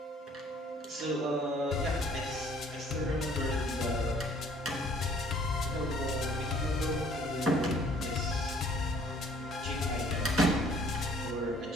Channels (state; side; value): normal; both; correlation 0.58